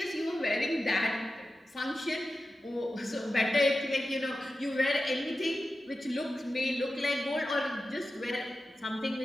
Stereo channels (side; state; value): both; normal; correlation 0.93